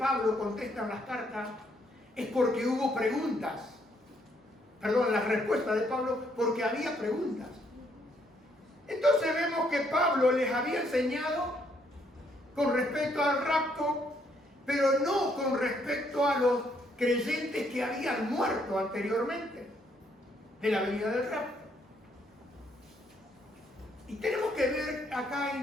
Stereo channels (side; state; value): both; normal; correlation 0.71